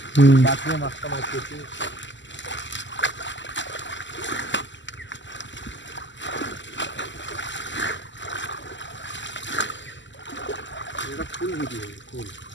বাঁচিয়ে মাছটা মারতেছি। এটা ফুল ভিডিও ফুল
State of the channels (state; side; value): late; right; 0.54 ms